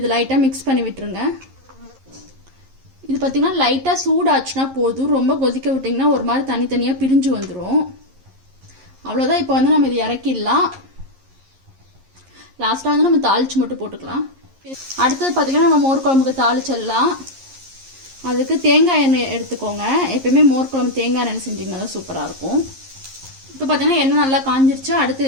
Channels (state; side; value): late; left; 11 ms